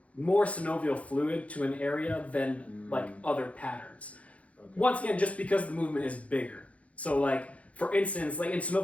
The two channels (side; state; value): right; late; 0.065 ms